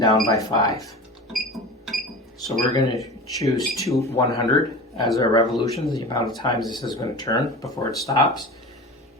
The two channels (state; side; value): normal; both; correlation 0.33